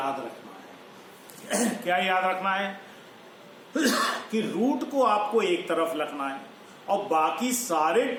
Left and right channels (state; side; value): identical; both; correlation 1.00